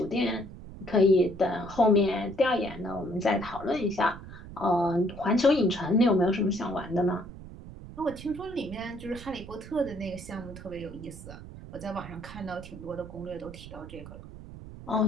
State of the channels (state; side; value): noise; right; rumble, 14 dB below the sound